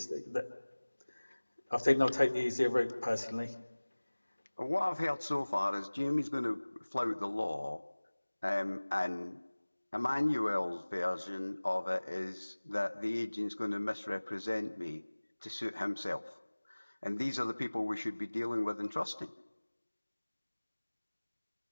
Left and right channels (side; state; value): both; inverted; correlation -1.00